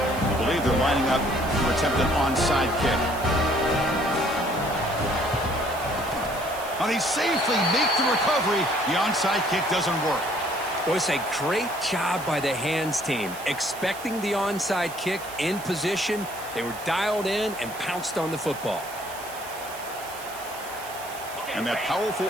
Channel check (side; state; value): right; noise; hiss, 15 dB below the sound